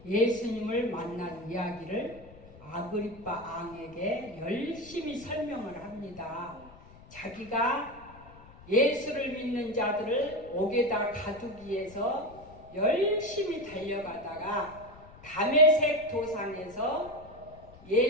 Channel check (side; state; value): left; noise; rumble, 21 dB below the sound